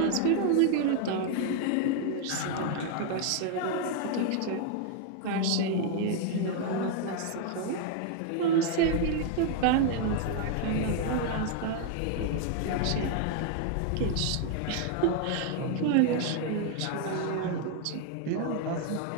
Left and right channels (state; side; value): different; both; correlation 0.00